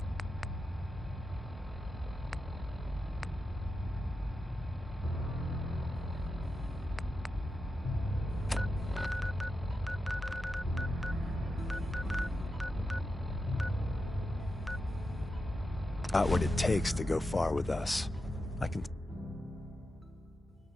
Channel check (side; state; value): both; normal; correlation 0.88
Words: Got what it takes to go far with us. I can...